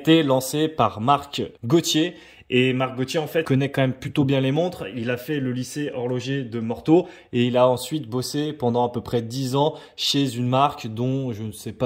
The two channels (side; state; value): both; identical; correlation 1.00